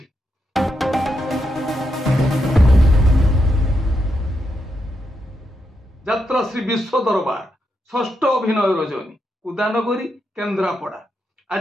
यात्रा श्री विश्व दरबार षष्ठ अभिनय रजनी उदानगरी केन्द्रापड़ा।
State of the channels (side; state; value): both; normal; correlation 0.83